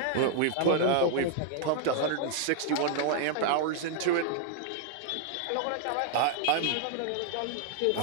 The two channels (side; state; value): both; different; correlation -0.01